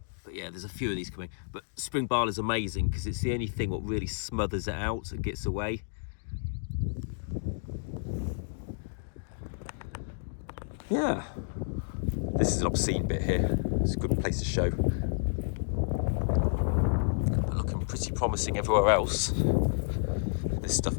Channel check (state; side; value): silent; right; digital silence